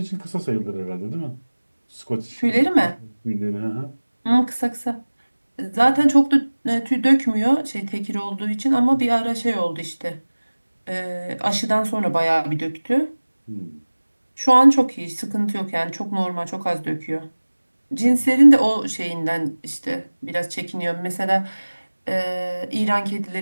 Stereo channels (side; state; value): both; inverted; correlation -1.00